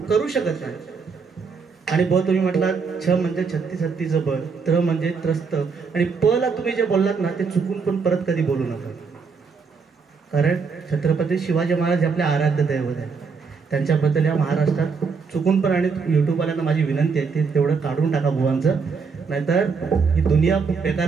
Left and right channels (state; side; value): quieter; left; 5.3 dB